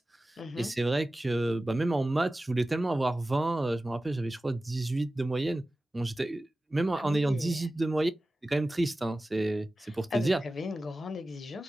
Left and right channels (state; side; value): normal; both; correlation 0.96